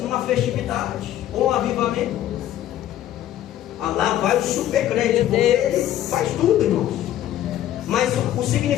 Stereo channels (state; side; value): quieter; right; 12.4 dB